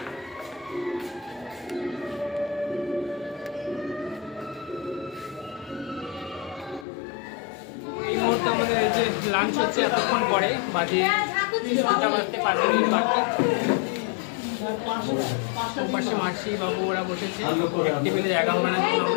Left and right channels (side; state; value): right; drops out; at 6.9 s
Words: এই মুহূর্তে আমাদের এই যে লাঞ্চ হচ্ছে এতক্ষণ পরে, বাজে 2টা বাজতে 5 মিনিট বাকি। পাশে মাসি বাবু ওরা বসেছে, টেবিলে জায়গা হবে না,